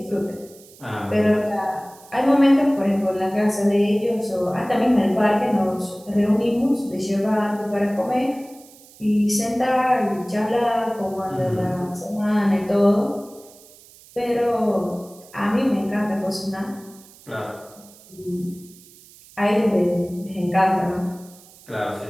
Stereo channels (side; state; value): right; noise; hiss, 23 dB below the sound